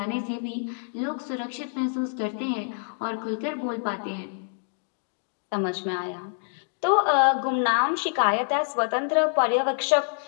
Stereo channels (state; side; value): silent; right; digital silence